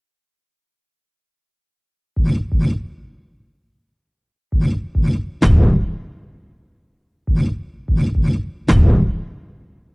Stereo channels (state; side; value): identical; both; correlation 1.00